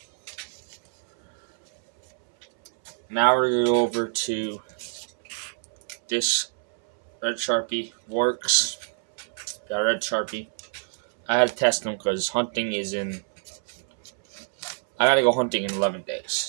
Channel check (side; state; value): left; silent; 61 dB below the other